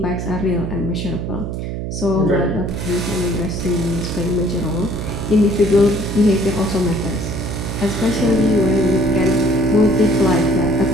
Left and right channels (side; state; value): right; noise; hum, 5 dB below the sound